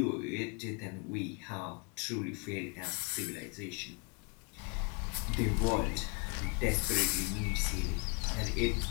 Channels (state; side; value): quieter; right; 31.4 dB